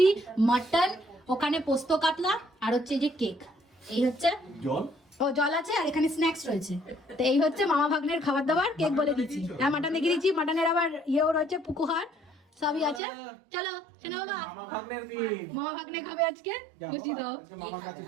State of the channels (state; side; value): drops out; left; at 13.0 s